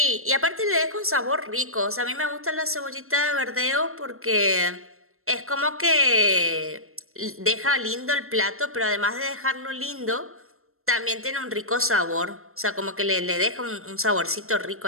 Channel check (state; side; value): late; left; 0.62 ms